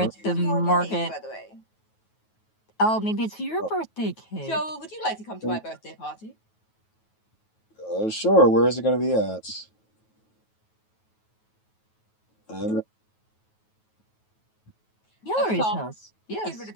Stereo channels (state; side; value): late; right; 9.3 ms